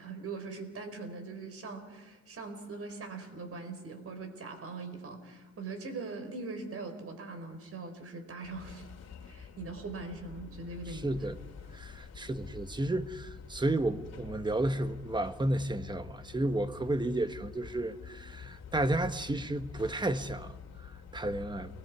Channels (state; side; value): normal; both; correlation 0.71